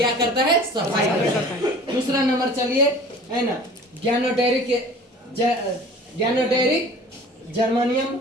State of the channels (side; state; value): both; normal; correlation 0.45